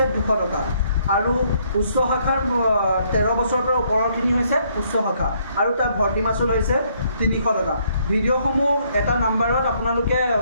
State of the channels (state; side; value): inverted; both; correlation -0.69